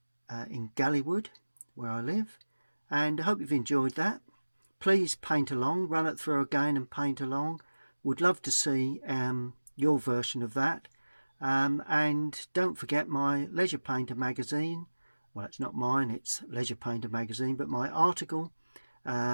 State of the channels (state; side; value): inverted; both; correlation -1.00